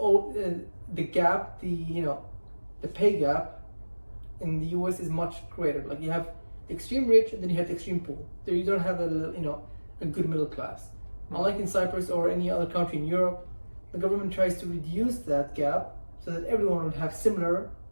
the gap, the pay gap in the US is much greater. Like you have the extreme rich and then you have the extreme poor. There you don't have a good middle class. Unlike in Cyprus or any other country in Europe, the government tries to reduce that gap so that everyone would have similar,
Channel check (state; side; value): inverted; both; correlation -1.00